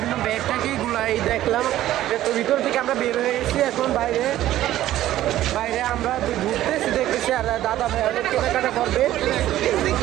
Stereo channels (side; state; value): left; quieter; 13.8 dB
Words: ব্যাগ টাকি গুলাই দেখলাম, তো ভিতর থেকে আমরা বের হয়ে গেছি, এখন বাইরে বাইরে আমরা ঘুরতেছি দেখতেছি, আর দাদা ভাই অনেক কেনাকাটা করবে,